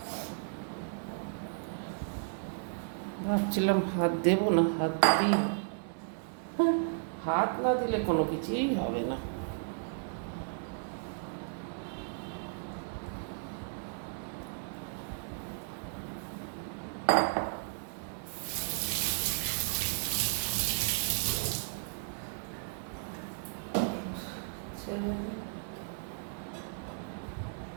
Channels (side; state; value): left; silent; digital silence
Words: ভাবছিলাম হাত দেবো না, হাত দিই, হাত না দিলে কোনো কিছুই হবে না।